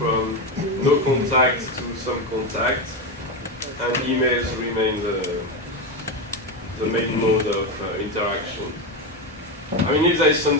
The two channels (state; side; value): normal; both; correlation 0.13